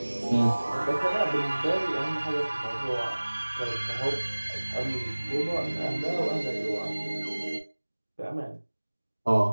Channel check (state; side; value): inverted; both; correlation -1.00